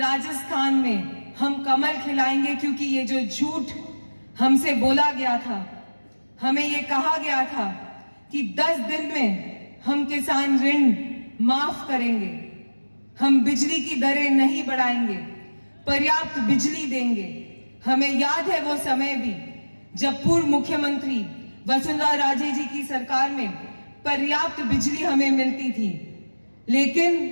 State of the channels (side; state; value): both; inverted; correlation -1.00